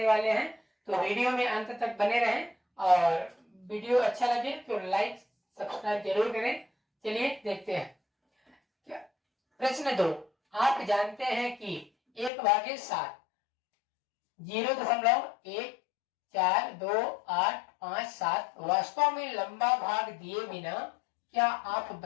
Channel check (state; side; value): drops out; right; at 12.3 s